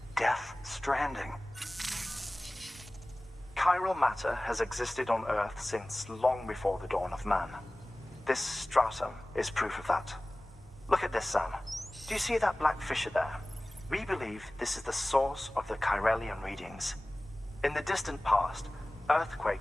Death Stranding. Chiral matter has existed on Earth since long before the dawn of man. This stratum is proof of that. Look at this, Sam. Do you see that black fissure there? We believe this is the source of the Chiralian readings. In the distant past,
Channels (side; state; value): both; normal; correlation 0.98